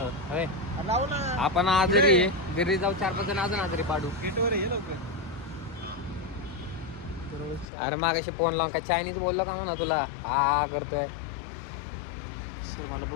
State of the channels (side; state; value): right; drops out; at 7.7 s